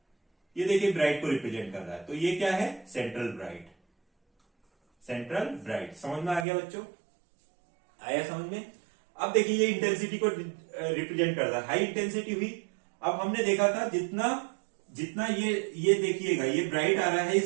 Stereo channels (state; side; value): drops out; left; at 6.5 s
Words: ये देखिए ब्राइट को रिप्रेजेंट कर रहा है, तो ये क्या है, सेंट्रल ब्राइट, सेंट्रल ब्राइट। समझ में आ गया बच्चों, आया समझ में। अब देखिए ये इंटेंसिटी को रिप्रेजेंट कर रहा है, हाई इंटेंसिटी हुई। अब हमने देखा था जितना ये देखिएगा, ये ब्राइट आ रहा है,